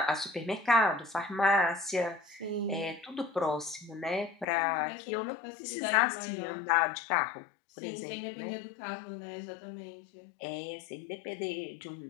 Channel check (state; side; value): drops out; right; at 4.5 s